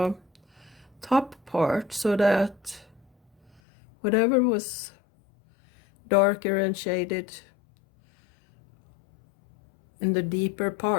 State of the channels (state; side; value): drops out; right; at 3.6 s